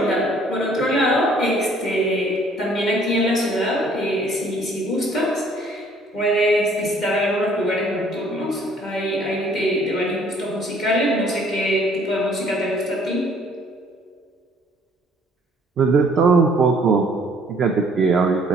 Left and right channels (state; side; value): normal; both; correlation 0.59